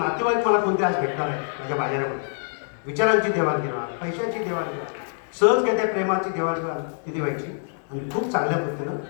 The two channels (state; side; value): silent; right; digital silence